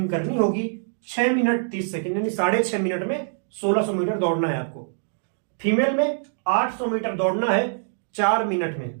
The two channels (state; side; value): silent; left; digital silence